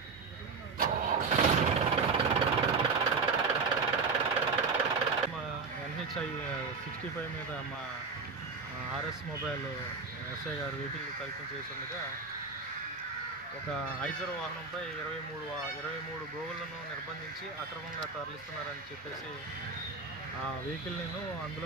NHI 65 మీద మా RS మొబైల్ ఎస్ఐ గారు వెహికల్ తనిఖీ చేస్తుండగా ఒక ఐజర్ వాహనంపై 23 గోవులను నిర్బంధించి అక్రమంగా తరలిస్తున్నారని చెప్పేసి ఆ వెహికల్ని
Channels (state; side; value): quieter; left; 4.8 dB